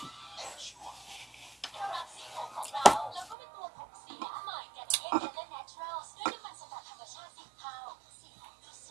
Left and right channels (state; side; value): drops out; left; at 3.4 s